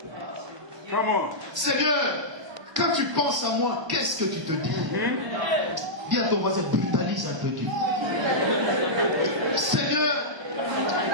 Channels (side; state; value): left; late; 1.0 ms